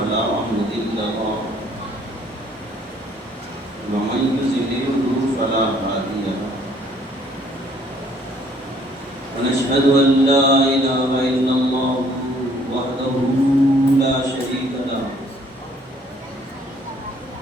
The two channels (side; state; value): both; normal; correlation 0.61